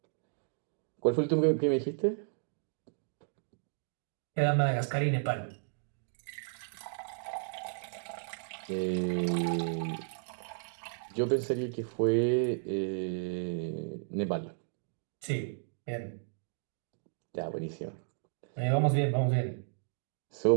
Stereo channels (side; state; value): left; silent; digital silence